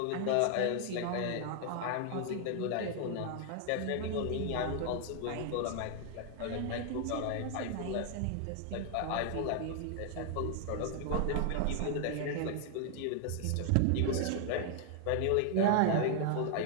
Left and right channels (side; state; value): both; different; correlation 0.00